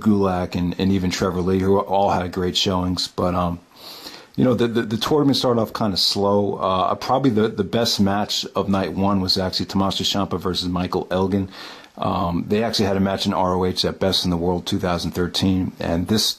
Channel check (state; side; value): identical; both; correlation 1.00